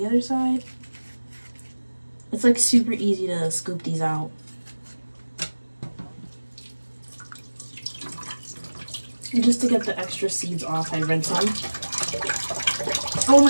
other side. It's like super easy to scoop these out. And just to get the extra seeds off, I rinse them. Oh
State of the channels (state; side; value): inverted; both; correlation -1.00